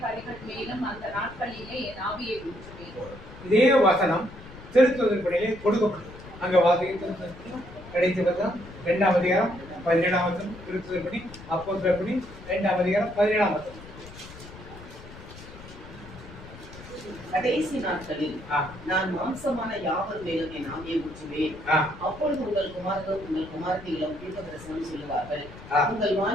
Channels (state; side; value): noise; left; rumble, 17 dB below the sound